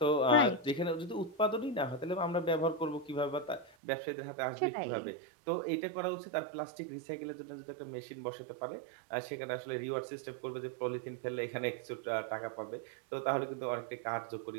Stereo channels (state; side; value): drops out; left; at 3.7 s